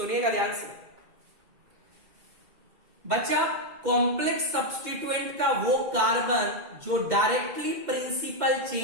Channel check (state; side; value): late; left; 2.1 ms